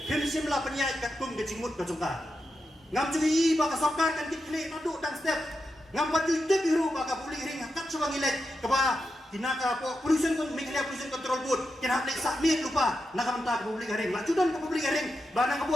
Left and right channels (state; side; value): normal; both; correlation 0.88